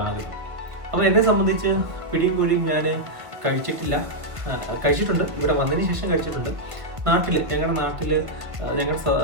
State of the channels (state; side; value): late; left; 1.5 ms